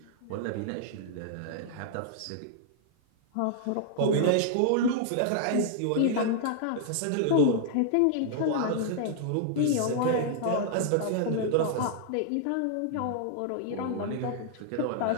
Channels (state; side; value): different; both; correlation -0.01